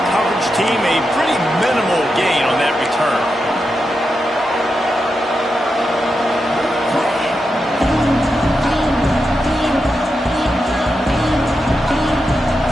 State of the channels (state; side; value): normal; both; correlation 0.87